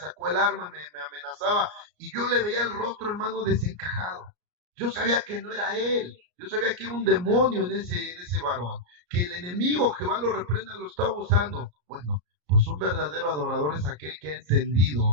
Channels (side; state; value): left; late; 34 ms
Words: el arma, me amenazaba y yo le veía el rostro, hermano, desencajado. Yo sabía que no era él, yo sabía que era un demonio en ese varón, que el enemigo, Jehová lo reprenda, lo estaba usando. Bueno, pues un verdadero adorador es aquel que ha